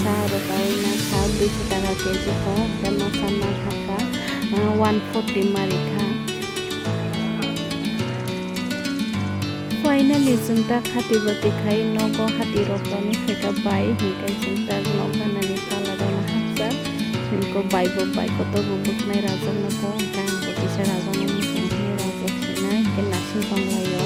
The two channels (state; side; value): identical; both; correlation 1.00